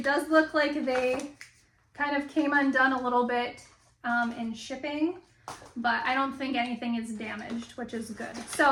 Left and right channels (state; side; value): identical; both; correlation 1.00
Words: does look like they kind of came undone a little bit in shipping, but I don't think anything is damaged, which is good.